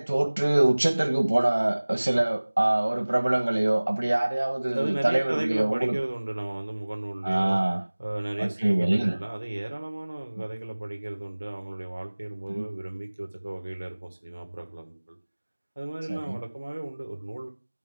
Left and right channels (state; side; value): inverted; both; correlation -1.00